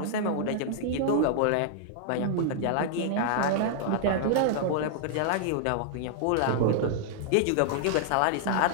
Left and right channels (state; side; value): different; both; correlation -0.01